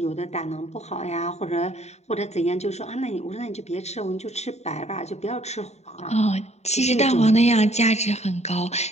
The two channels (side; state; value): right; late; 0.32 ms